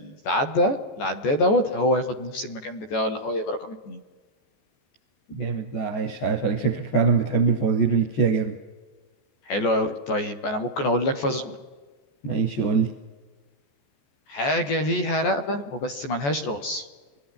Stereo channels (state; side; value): late; right; 14 ms